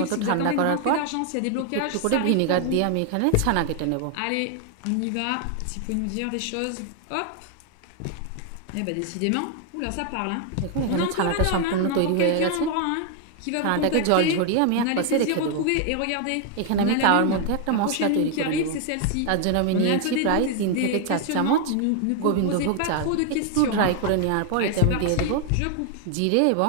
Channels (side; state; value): both; different; correlation 0.00